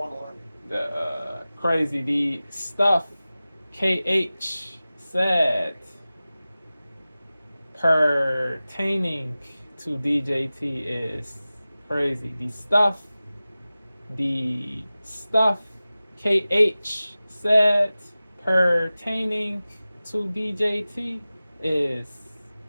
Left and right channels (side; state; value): both; inverted; correlation -0.97